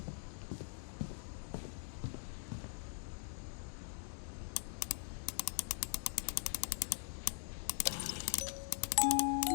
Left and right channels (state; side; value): silent; right; digital silence